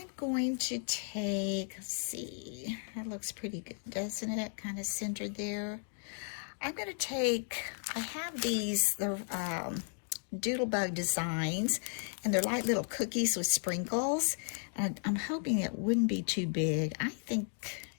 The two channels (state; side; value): silent; right; 55 dB below the other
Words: going to take, let's see, that looks pretty good, doesn't it? Kind of centered there. I'm going to take, I have these, the Doodlebug designs, and they're like little cookies with sprinkles. And I'm hoping it wouldn't be too big. I think